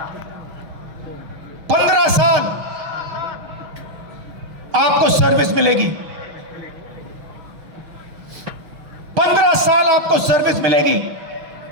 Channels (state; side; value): late; left; 6.6 ms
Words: 15 साल आपको सर्विस मिलेगी, 15 साल आपको सर्विस मिलेगी।